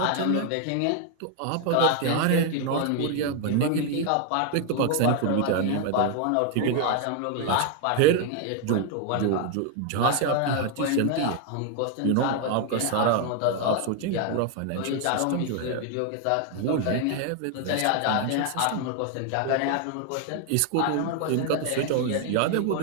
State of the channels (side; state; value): both; different; correlation 0.00